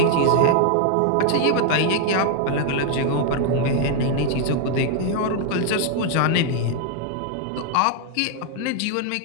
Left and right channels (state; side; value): different; both; correlation 0.00